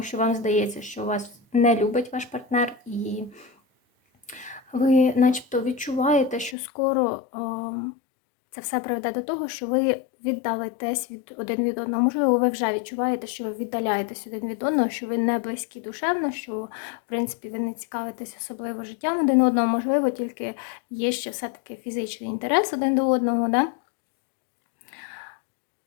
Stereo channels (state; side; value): drops out; right; at 6.6 s